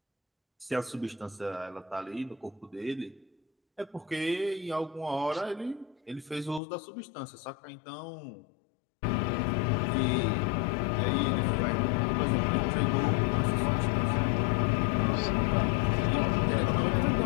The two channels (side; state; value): right; drops out; at 6.6 s